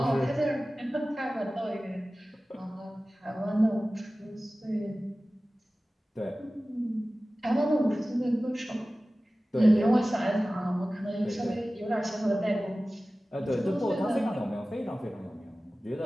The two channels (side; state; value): both; normal; correlation 0.97